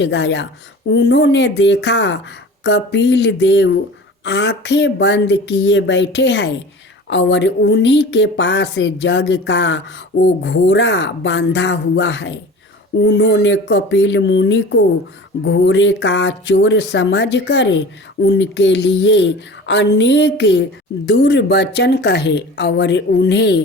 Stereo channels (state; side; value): normal; both; correlation 0.38